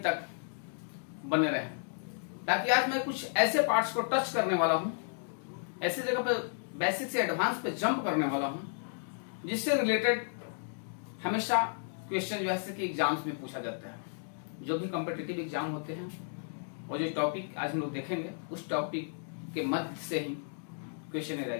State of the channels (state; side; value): silent; right; digital silence